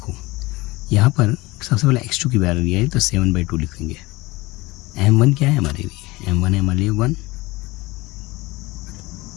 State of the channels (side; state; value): right; quieter; 21.3 dB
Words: यहाँ पर सबसे पहले x2 की वैल्यू आई तो 7/2 लिखेंगे। M1 क्या है हमारे लिए, M1 है हमारे लिए 1,